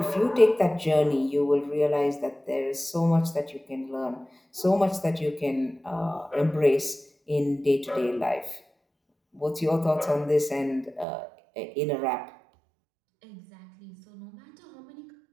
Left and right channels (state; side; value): drops out; left; at 11.1 s